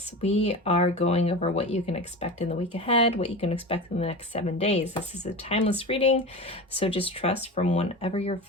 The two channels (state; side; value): normal; both; correlation 0.28